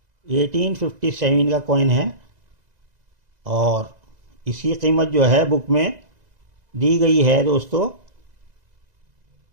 1857 का कॉइन है, और इसकी कीमत जो है बुक में दी गई है दोस्तों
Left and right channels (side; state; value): left; late; 2.0 ms